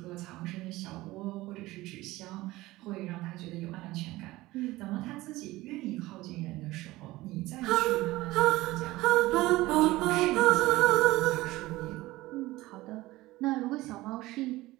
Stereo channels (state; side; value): quieter; left; 18.7 dB